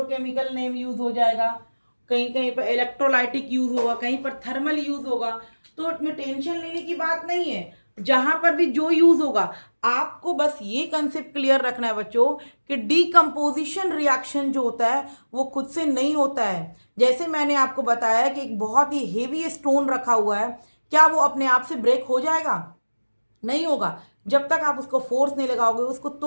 नेम यूज हो जाएगा, कहीं कहीं पर इलेक्ट्रोलाइटिक यूज होगा, कहीं पर थर्मल यूज होगा। तो इसमें टेंशन लेने की बात नहीं है, जहां पर भी जो यूज होगा आपको बस ये कंसेप्ट क्लियर रखना है बच्चों कि डीकम्पोजिशन रिएक्शन जो होता है वो खुद से नहीं होता है। जैसे मैंने आपको बताया कि एक बहुत ही हेवी स्टोन रखा हुआ है, क्या वो अपने आप से ब्रेक हो जाएगा? नहीं होगा। जब तक आप उसको फोर्स नहीं लगाओगे, उसको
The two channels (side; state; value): both; inverted; correlation -1.00